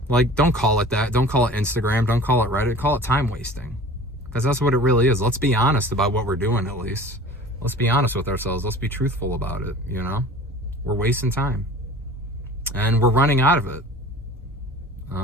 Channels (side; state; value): both; normal; correlation 0.42